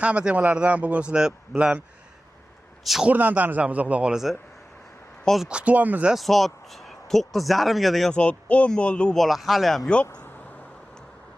temalardan bugun sizlar bilan chuqurdan tanishamiz, xudo xolasa. Hozir kutyapmiz, soat 9:30 ga degan soat 10 bo'ldi, u bola hali ham yo'q.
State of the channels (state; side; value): normal; both; correlation 0.95